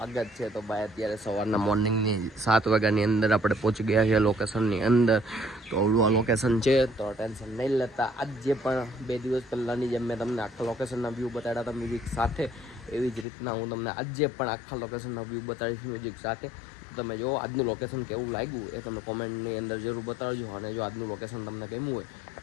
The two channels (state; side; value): drops out; right; at 13.2 s